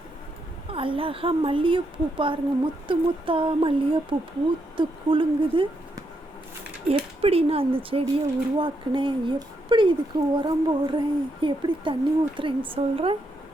அழகாக மல்லிகைப்பூ பாருங்கள், முத்து முத்தா மல்லிகைப்பூ பூத்து குலுங்குது. எப்படி நான் அந்த செடியை உருவாக்குனேன், எப்படி இதுக்கு உரம் போடுறேன், எப்படி தண்ணி ஊற்றுறேன்னு சொல்கிறேன்.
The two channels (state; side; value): normal; both; correlation 0.80